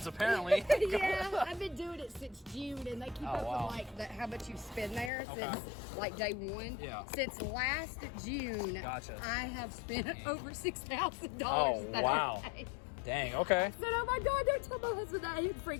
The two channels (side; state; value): right; drops out; at 5.1 s